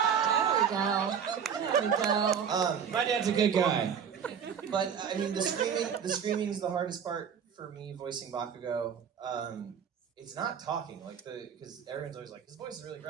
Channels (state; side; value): quieter; left; 7.6 dB